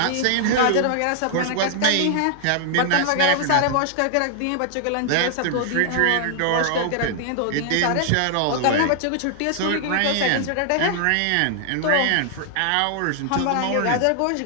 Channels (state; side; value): different; both; correlation 0.00